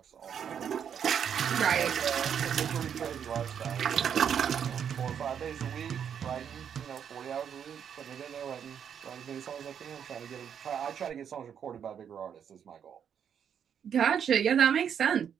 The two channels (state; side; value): quieter; left; 8.2 dB